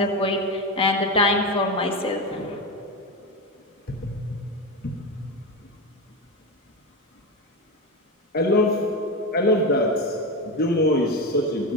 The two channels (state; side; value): normal; both; correlation 0.17